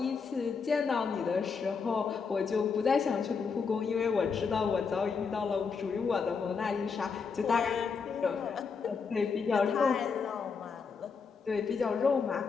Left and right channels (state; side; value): quieter; right; 5.5 dB